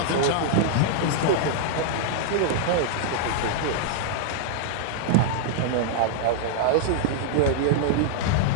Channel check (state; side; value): different; both; correlation -0.01